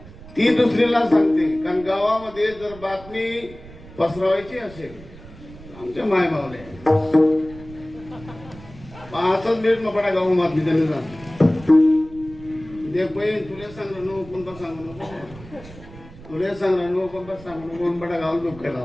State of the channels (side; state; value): right; noise; rumble, 18 dB below the sound